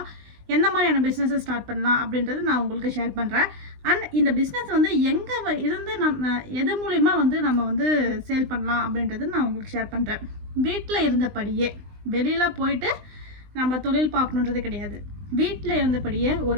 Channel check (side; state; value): left; late; 20 ms